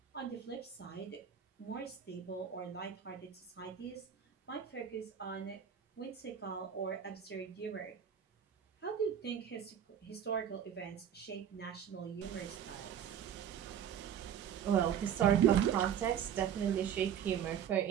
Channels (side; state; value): left; quieter; 9.0 dB